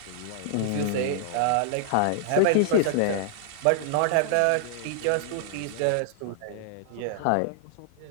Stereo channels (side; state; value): both; different; correlation -0.01